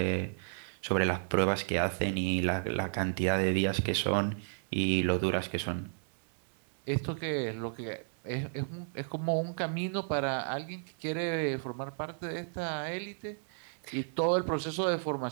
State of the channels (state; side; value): silent; left; 56 dB below the other